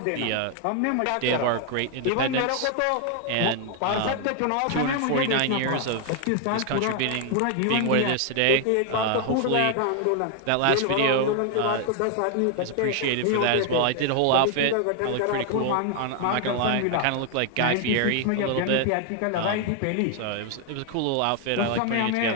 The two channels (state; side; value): different; both; correlation 0.00